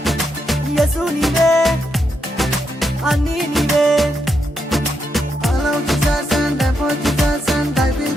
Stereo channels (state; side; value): normal; both; correlation 0.81